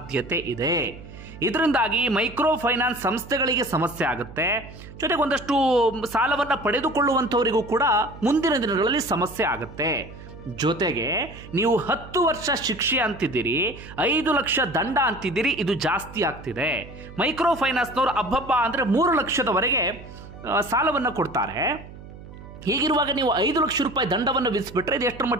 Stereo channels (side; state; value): right; noise; hum, 16 dB below the sound